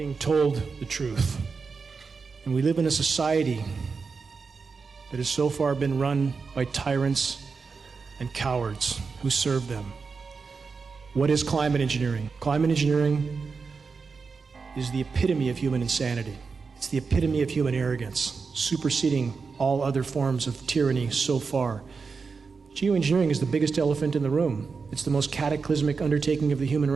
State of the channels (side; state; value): left; quieter; 4.9 dB